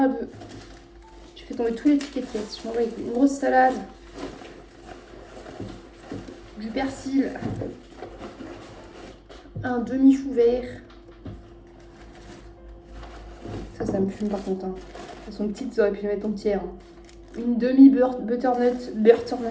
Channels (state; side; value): identical; both; correlation 1.00